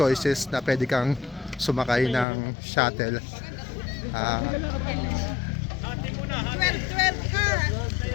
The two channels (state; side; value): drops out; right; at 2.2 s